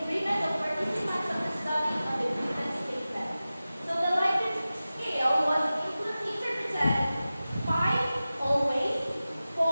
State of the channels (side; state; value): both; inverted; correlation -0.96